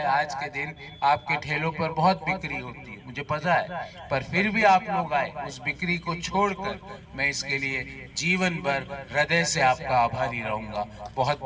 आज के दिन आपके ठेलों पर बहुत बिक्री होती है, मुझे पता है, पर फिर भी आप लोग आए, उस बिक्री को छोड़कर मैं इसके लिए जीवन भर हृदय से आपका आभारी रहूंगा। बहुत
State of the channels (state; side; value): identical; both; correlation 1.00